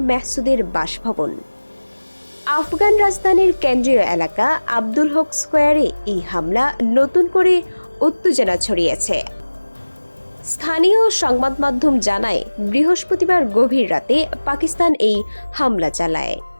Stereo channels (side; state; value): both; inverted; correlation -1.00